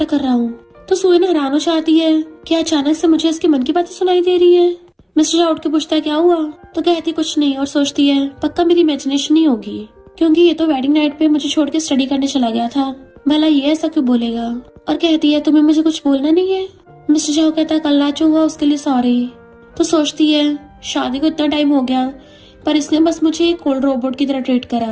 कर रहा हूँ। तो सोयन हैरान हो जाती है कि अचानक से मुझे इसके मन की बातें सुनाई दे रही है। मिस्टर शाह उठ के पूछता है क्या हुआ, तो कहती कुछ नहीं और सोचती है पक्का मेरी इमेजिनेशन ही होगी, क्योंकि ये तो वेडिंग नाइट पे मुझे छोड़ के स्टडी करने चला गया था, भला ये ऐसा क्यों बोलेगा। और कहती है तुम्हें मुझे कुछ बोलना नहीं है। मिस्टर शाह कहता है कल रात जो हुआ उसके लिए सॉरी। तो सोचती है शादी को इतना टाइम हो गया पर इसने बस मुझे एक कोल्ड रोबोट की तरह ट्रीट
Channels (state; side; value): identical; both; correlation 1.00